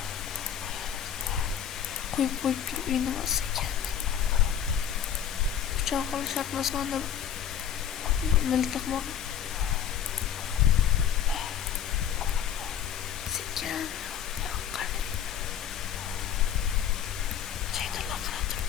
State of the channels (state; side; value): quieter; right; 9.1 dB